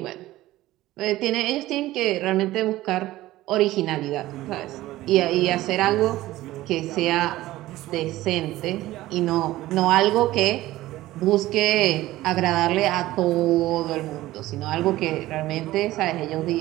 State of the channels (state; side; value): quieter; left; 16.4 dB